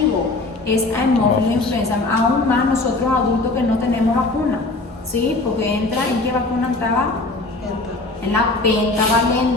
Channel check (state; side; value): quieter; right; 3.2 dB